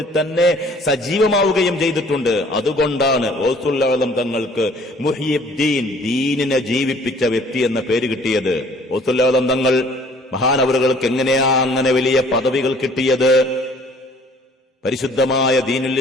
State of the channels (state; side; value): normal; both; correlation 0.55